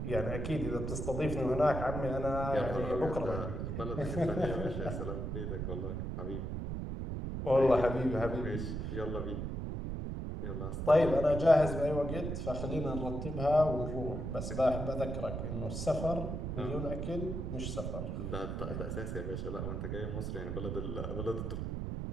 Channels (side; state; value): right; noise; rumble, 3 dB below the sound